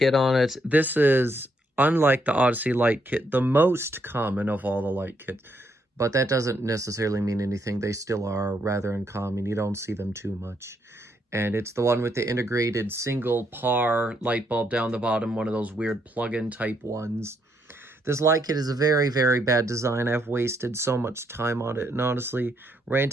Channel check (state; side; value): normal; both; correlation 0.75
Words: on it. This is, unlike the Odyssey light kit, the most common of all the light kits. But that doesn't necessarily mean anything. They still are rather uncommon. You don't see them too much. And it's the one with the integrated single PAR light bulb down the bottom, one of those weird plug-in type ones. This light kit is a very, very bad design. I've wasted so much time on it, and honestly,